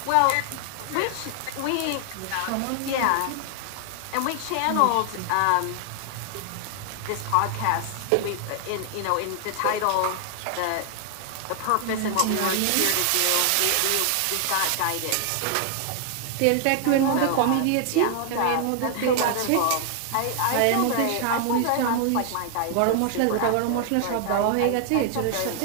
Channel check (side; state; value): both; different; correlation 0.00